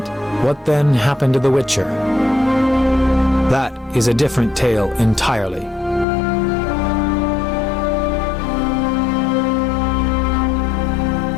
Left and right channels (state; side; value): drops out; right; at 6.1 s